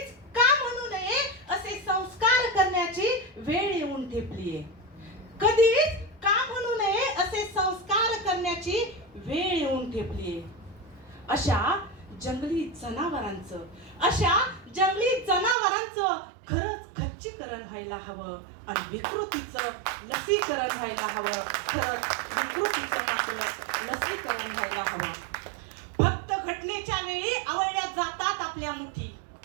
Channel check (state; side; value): drops out; left; at 15.6 s